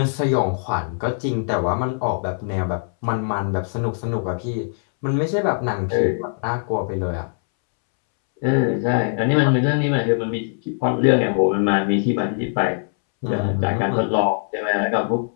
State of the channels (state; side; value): silent; right; 65 dB below the other